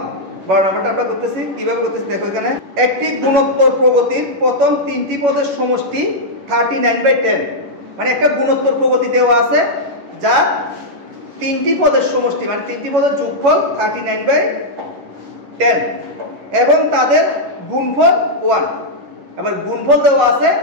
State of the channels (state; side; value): late; left; 11 ms